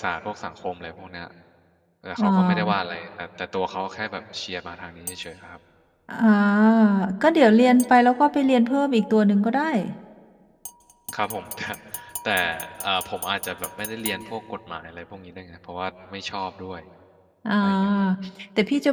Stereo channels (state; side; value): identical; both; correlation 1.00